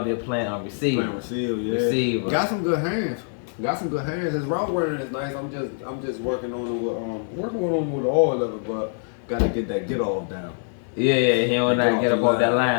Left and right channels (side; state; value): right; silent; digital silence